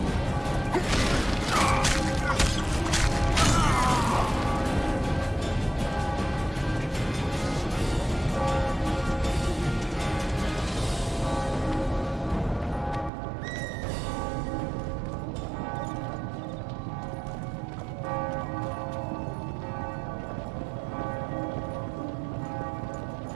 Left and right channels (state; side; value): drops out; left; at 13.1 s